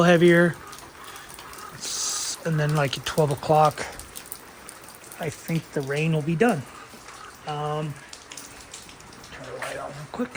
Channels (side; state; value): both; identical; correlation 1.00